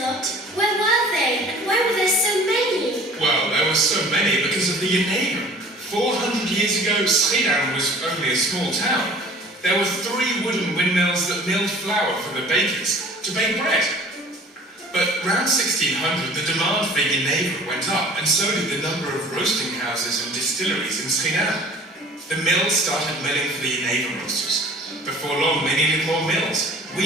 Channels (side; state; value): both; normal; correlation 0.48